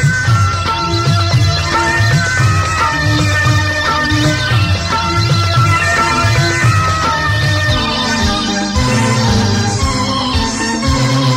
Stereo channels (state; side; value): identical; both; correlation 1.00